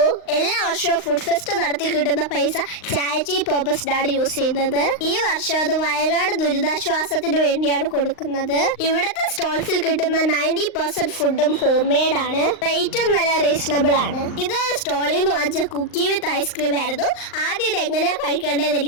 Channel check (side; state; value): right; late; 38 ms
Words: എല്ലാ വർഷവും ഫുഡ് ഫെസ്റ്റ് നടത്തി കിട്ടുന്ന പൈസ ചാരിറ്റി പർപ്പസിനാണ് യൂസ് ചെയ്യുന്നത്. ഈ വർഷം അത് വയനാട് ദുരിതാശ്വാസത്തിന് വേണ്ടിയാണ് കൊടുക്കുന്നത്. ഇവിടുത്തെ സ്റ്റോൾസിൽ കിട്ടുന്ന 90% ഫുഡും ഹോം മെയ്ഡ് ആണ്. റേറ്റും നല്ല റീസണബിൾ ആണ്. ഇത് സ്റ്റോളിൽ നിന്ന് വാങ്ങിച്ച കുക്കി വിത്ത് ഐസ്ക്രീം ആയിരുന്നു. ആദ്യം ഇത് എങ്ങനെയാ കഴിക്കേണ്ടതെന്ന്